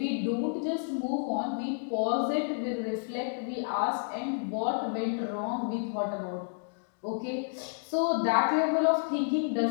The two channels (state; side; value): silent; right; digital silence